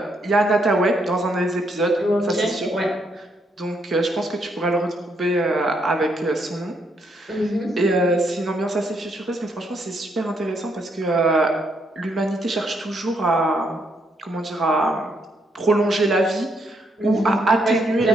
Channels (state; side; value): normal; both; correlation 0.75